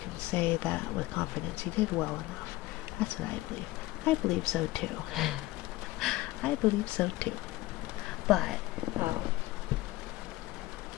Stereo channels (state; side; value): quieter; right; 18.3 dB